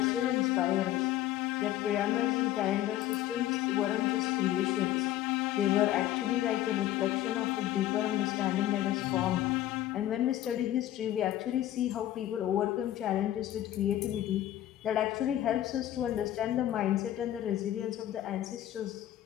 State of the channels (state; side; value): quieter; right; 13.2 dB